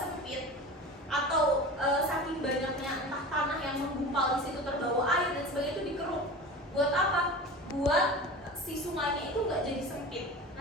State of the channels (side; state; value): both; normal; correlation 0.33